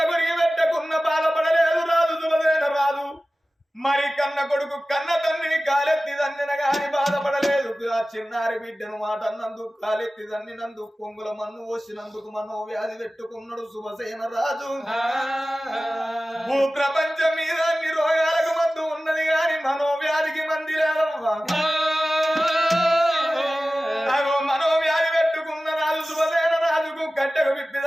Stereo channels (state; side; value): normal; both; correlation 0.96